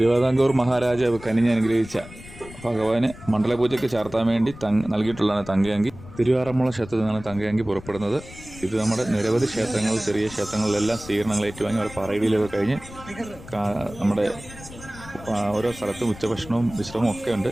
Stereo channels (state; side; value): noise; left; rumble, 16 dB below the sound